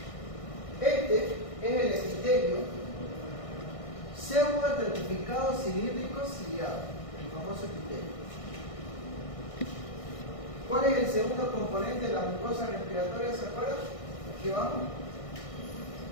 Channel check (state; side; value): late; right; 1.6 ms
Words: Este es el epitelio pseudo-estratificado cilíndrico ciliado, el famoso epitelio. ¿Cuál es el segundo componente de la mucosa respiratoria? ¿Se acuerdan? Aquí vamos.